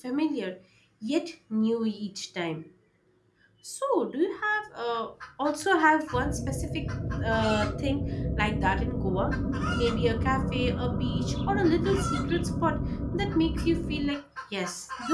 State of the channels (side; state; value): both; identical; correlation 1.00